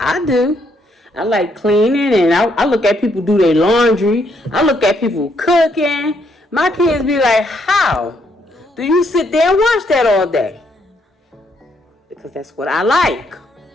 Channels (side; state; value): both; normal; correlation 0.73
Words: do. I like cleaning, and I look at people do their laundry. I look at people cooking. My kids be like, how do you sit there and watch that all day? Because that's what I like.